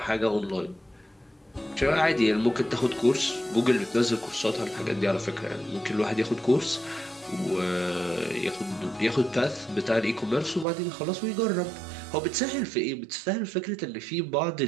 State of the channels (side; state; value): left; drops out; at 10.7 s